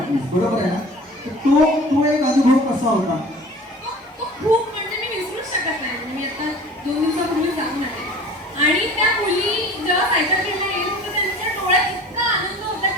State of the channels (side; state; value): both; normal; correlation 0.43